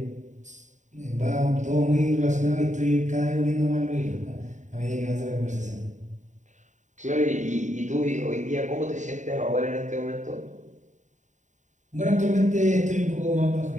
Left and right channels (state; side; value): late; left; 0.35 ms